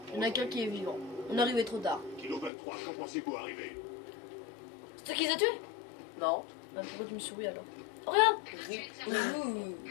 Il y en a qu'un qui est vivant. On est arrivé trop tard. Kilo 23, quand pensez-vous arriver? C'est toi qui les as tués? Non. Bah, pourquoi tu me souris alors? Oh, regarde. Rip. Ouh.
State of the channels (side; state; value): right; drops out; at 2.5 s